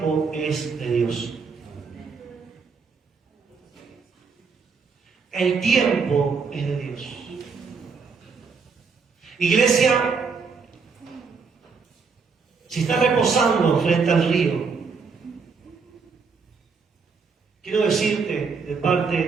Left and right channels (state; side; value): quieter; left; 5.2 dB